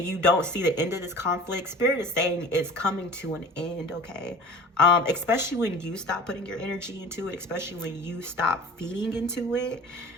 you don't see the end of this conflict, Spirit is saying it's coming to an end, okay? Especially when you stop putting your energy into it, especially when you stop feeding into it,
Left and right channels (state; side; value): normal; both; correlation 0.41